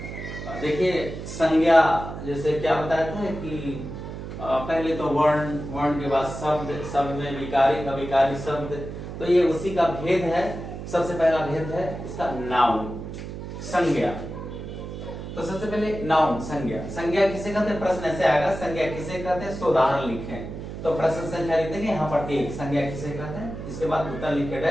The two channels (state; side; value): noise; right; hum, 9 dB below the sound